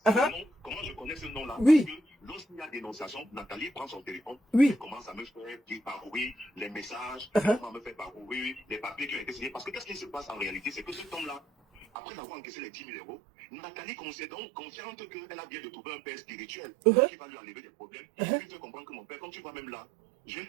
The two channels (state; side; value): drops out; left; at 11.9 s